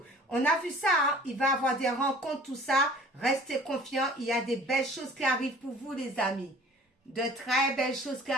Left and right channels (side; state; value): both; normal; correlation 0.48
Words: On a vu ça, hein? Il va y avoir des rencontres, tout ça. Restez confiants, il y a des belles choses qui arrivent pour vous, les amis. De très belles choses qui